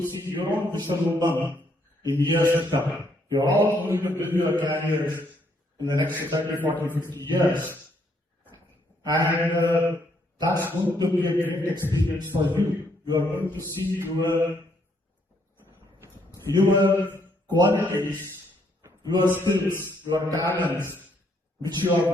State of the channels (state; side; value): normal; both; correlation 0.71